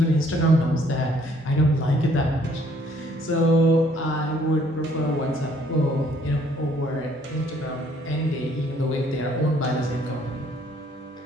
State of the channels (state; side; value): normal; both; correlation 0.63